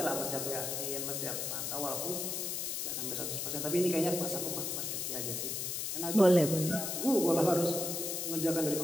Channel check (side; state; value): left; noise; hiss, 2 dB below the sound